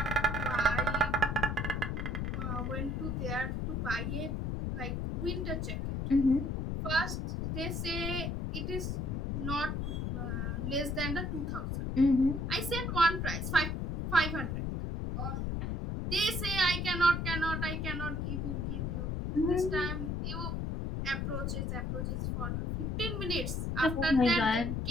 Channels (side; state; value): left; noise; rumble, 1 dB below the sound